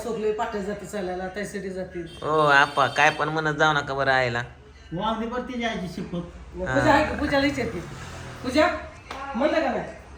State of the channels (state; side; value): identical; both; correlation 1.00